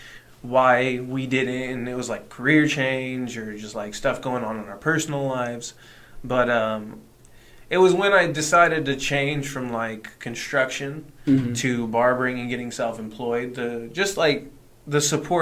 why we didn't, and it was like career change or just like stuff going on in our personal lives. But it was when I decided to change from like construction to barbering and getting self-employed, just like the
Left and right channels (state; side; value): identical; both; correlation 1.00